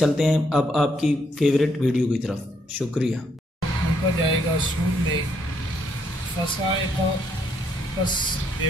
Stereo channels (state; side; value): normal; both; correlation 0.73